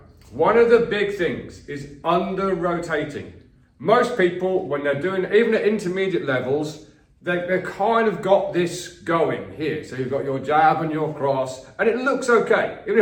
one of the big things is under-rotating. Most people, when they're doing, even at intermediate levels, they've kind of got this going here. So you've got your jab and your cross, and it looks okay.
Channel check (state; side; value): identical; both; correlation 1.00